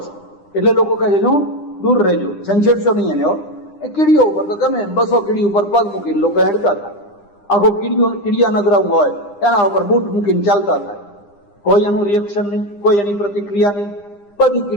છે. એટલે લોકો કહે છે દૂર રહેજો, છંછેડશો નહીં એને. એ કીડીઓ ઉપર તો ગમે એમ 200 કીડી ઉપર પગ મૂકીને લોકો હેડતા થાય. આખો કીડિયા નગરાઉ હોય એના ઉપર બૂટ મૂકીને ચાલતા થાય. કોઈ એનું રિએક્શન નહીં, કોઈ એની પ્રતિક્રિયા નહીં. બધી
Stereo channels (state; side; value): late; right; 9.9 ms